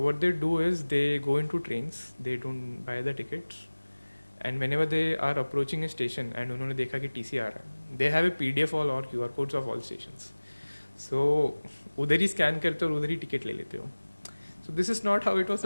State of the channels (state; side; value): inverted; both; correlation -1.00